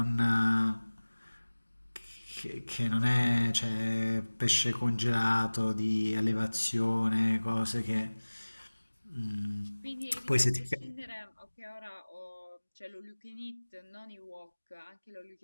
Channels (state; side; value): inverted; both; correlation -1.00